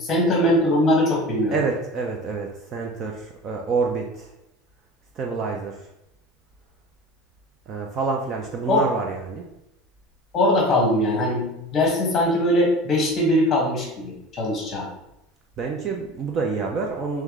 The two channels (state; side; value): normal; both; correlation 0.36